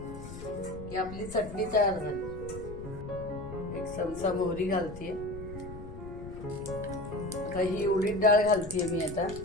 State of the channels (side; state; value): left; noise; rumble, 12 dB below the sound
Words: की आपली चटणी तयार झाली. 1 चमचा मोहरी घालतीये. आता ही उडीद डाळ घालतीये मी आता.